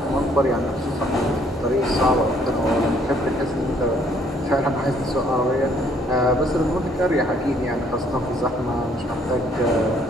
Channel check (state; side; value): normal; both; correlation 0.64